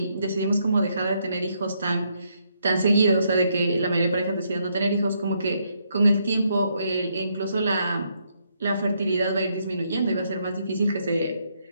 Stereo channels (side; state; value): both; inverted; correlation -0.75